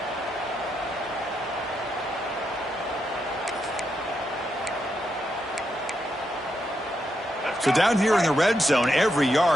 So down here in the red zone, every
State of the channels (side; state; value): both; normal; correlation 0.82